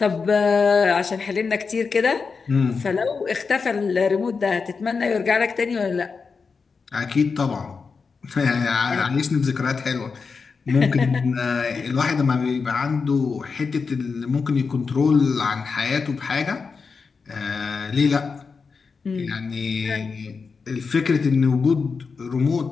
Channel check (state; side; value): quieter; right; 5.0 dB